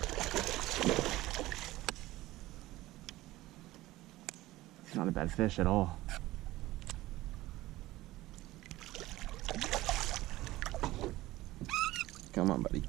It's not a bad fish at all. Come on, buddy.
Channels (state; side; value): quieter; left; 17.4 dB